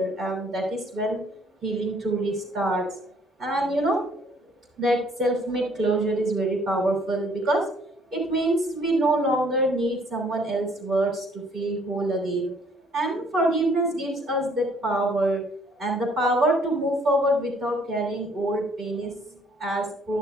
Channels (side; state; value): both; normal; correlation 0.62